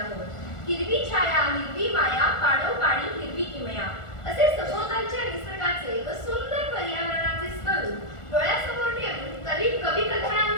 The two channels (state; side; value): late; right; 1.4 ms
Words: हिरवी छाया हिरवी माया पाडोपाडी हिरवी किमया असे सभोवतालच्या निसर्गाचे व सुंदर पर्यावरणाचे स्वरूप डोळ्यासमोर ठेवून कवी